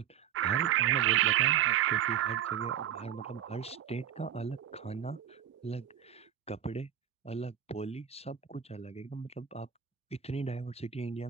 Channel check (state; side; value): quieter; left; 9.7 dB